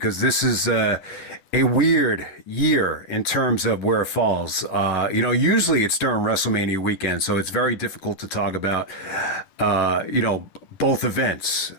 this is a weird year in terms of where it falls. Usually it's during WrestleMania weekend, so it's very difficult to talk about, both events.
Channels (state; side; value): late; right; 10 ms